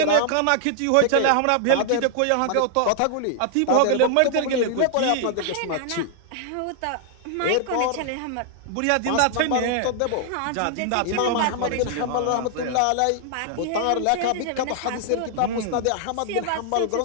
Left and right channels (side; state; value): both; different; correlation 0.00